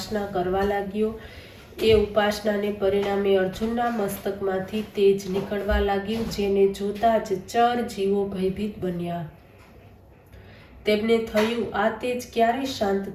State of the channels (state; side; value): identical; both; correlation 1.00